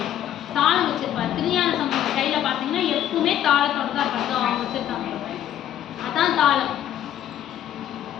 தாளம் வச்சிருப்பாரு. திருஞான சம்பந்தர் கையில பார்த்தீங்கன்னா எப்பவுமே தாளத்தோட தான் இருப்பாங்க. அவங்க வச்சிருக்காங்க, அதான் தாளம்.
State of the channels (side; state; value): right; quieter; 11.2 dB